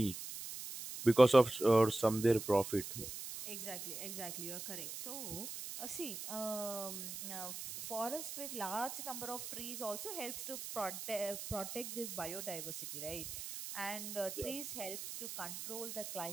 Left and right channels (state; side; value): noise; right; hiss, 8 dB below the sound